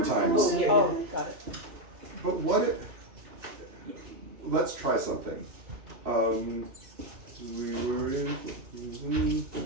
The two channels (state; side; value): late; left; 2.9 ms